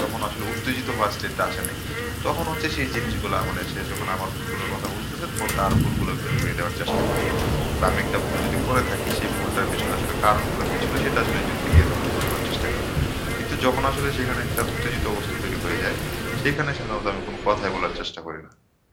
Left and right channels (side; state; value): both; identical; correlation 1.00